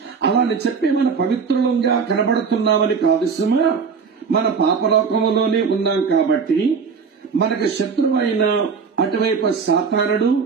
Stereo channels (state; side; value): quieter; left; 5.6 dB